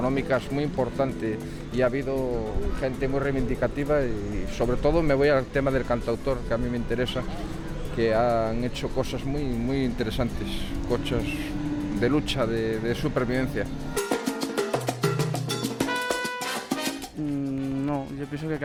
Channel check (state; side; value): identical; both; correlation 1.00